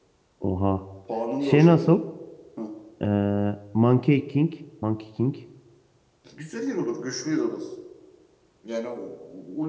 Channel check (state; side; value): identical; both; correlation 1.00